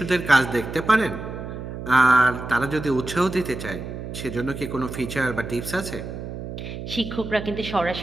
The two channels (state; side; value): noise; right; hum, 8 dB below the sound